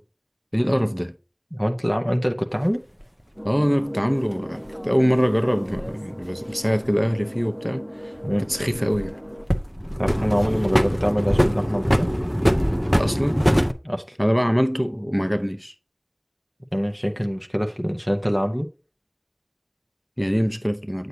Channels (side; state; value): both; identical; correlation 1.00